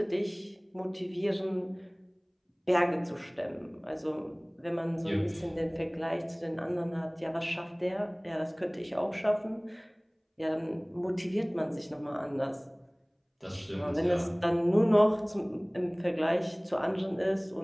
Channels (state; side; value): identical; both; correlation 1.00